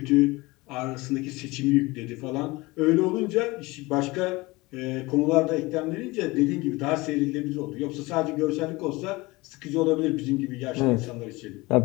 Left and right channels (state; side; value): quieter; right; 22.3 dB